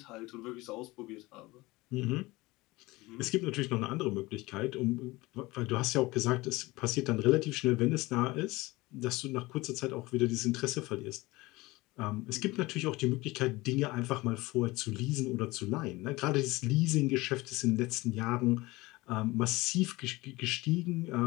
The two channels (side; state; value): right; quieter; 21.2 dB